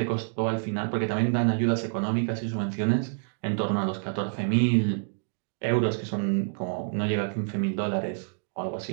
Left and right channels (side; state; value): left; silent; digital silence